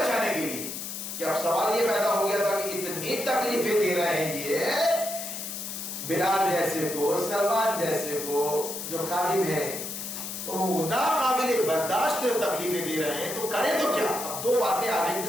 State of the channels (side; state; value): left; noise; hiss, 7 dB below the sound